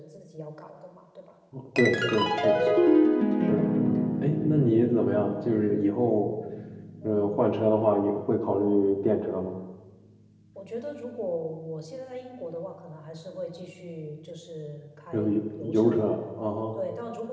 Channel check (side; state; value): both; identical; correlation 1.00